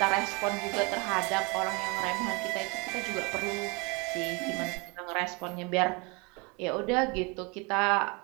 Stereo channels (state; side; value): quieter; left; 29.3 dB